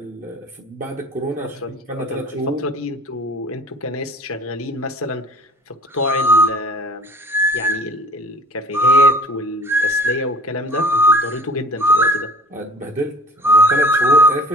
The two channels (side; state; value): both; normal; correlation 0.48